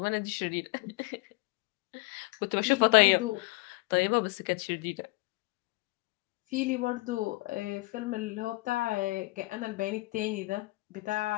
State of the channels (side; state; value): right; quieter; 23.7 dB